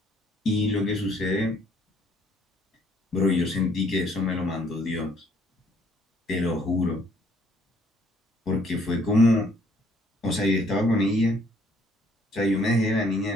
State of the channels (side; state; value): both; normal; correlation 0.63